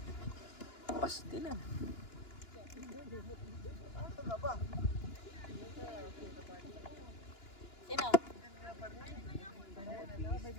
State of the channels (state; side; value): late; right; 2.9 ms